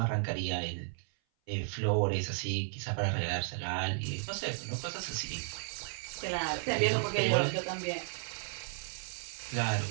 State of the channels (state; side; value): silent; left; 55 dB below the other